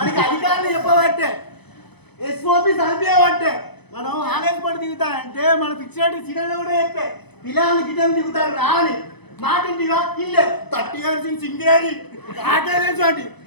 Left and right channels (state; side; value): late; right; 0.99 ms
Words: అధికారులు చెప్పబట్టే ఎస్ఓపి చదివేవంటే మనం ఆలయం పడి దిగుతానంటే మన ఫిక్స్డ్ సిగ్నల్ కూడా చెప్పే పిల్లలు గిన్నెలు దిగుతారు రాని మాటింటిగా ఇల్లే 30 years ఇన్ సింగేరి ఆటేలేంటి